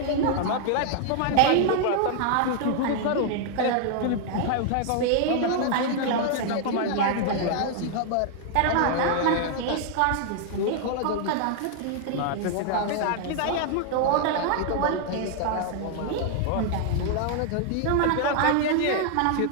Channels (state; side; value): different; both; correlation 0.00